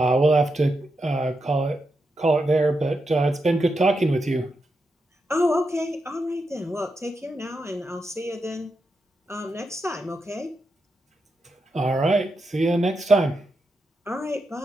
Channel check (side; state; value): both; normal; correlation 0.86